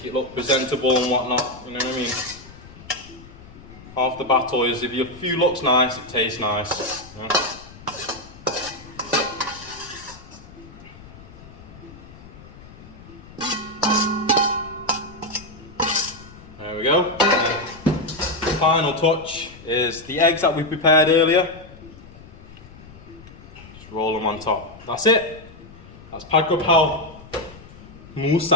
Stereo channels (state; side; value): noise; left; rumble, 19 dB below the sound